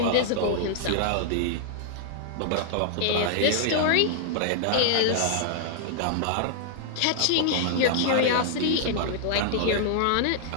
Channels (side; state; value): both; different; correlation -0.01